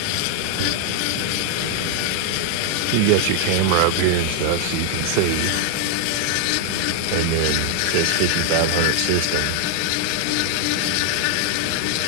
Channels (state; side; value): different; both; correlation 0.00